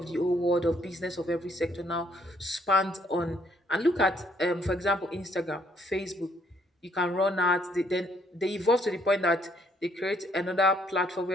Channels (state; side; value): normal; both; correlation 0.67